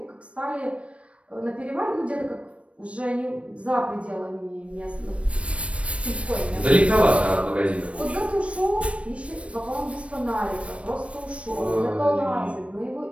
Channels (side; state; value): left; late; 0.062 ms